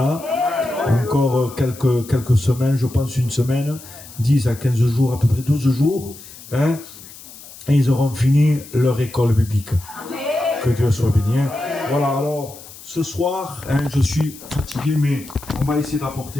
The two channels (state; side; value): noise; left; hiss, 18 dB below the sound